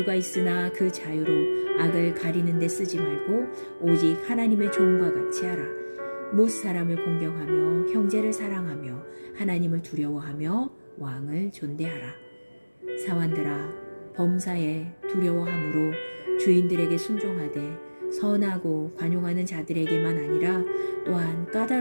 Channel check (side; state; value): both; inverted; correlation -1.00